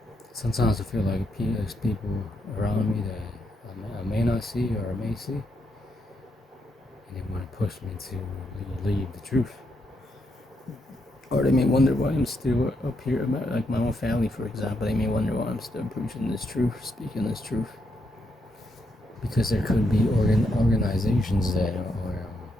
Sometimes I feel like there's people around me that I may not see or I may see, and they want to push me to leave the truth. Or they may wonder why I'm still up here, like my own family, for example. They may wonder why I'm still preaching this truth, speaking this truth. Because there could be organizations that are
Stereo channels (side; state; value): both; normal; correlation 0.79